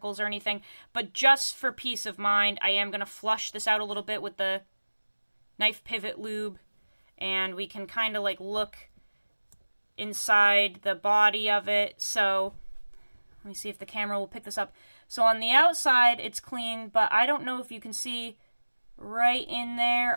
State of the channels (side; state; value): both; inverted; correlation -1.00